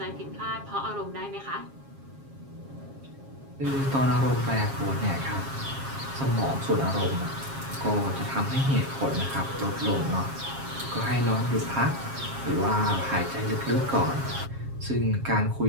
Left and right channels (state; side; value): late; left; 7.4 ms